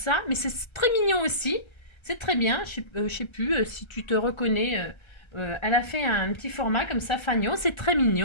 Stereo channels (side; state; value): right; late; 1.3 ms